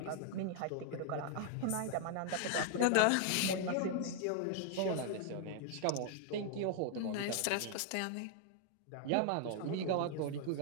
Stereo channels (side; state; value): both; different; correlation 0.00